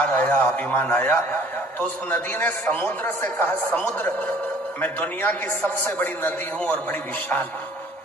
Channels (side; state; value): both; normal; correlation 0.54